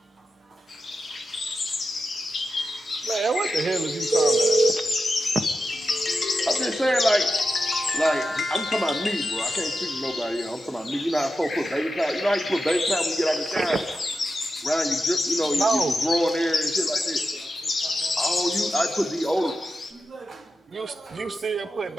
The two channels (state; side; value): normal; both; correlation 0.89